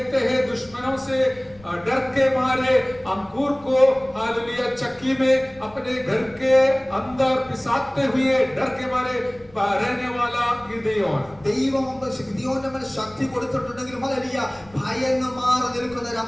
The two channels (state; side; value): noise; left; rumble, 25 dB below the sound